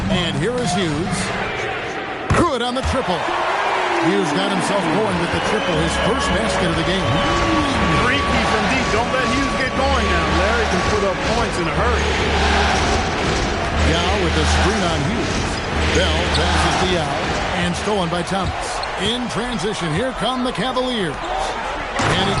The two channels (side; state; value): both; identical; correlation 1.00